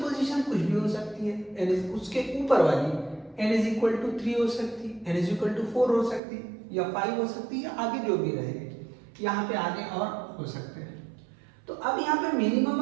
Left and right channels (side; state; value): left; drops out; at 6.2 s